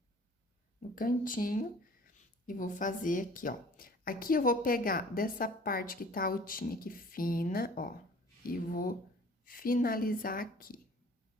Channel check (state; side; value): normal; both; correlation 0.49